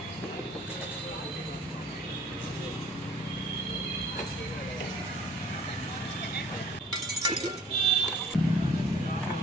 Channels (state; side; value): normal; both; correlation 0.53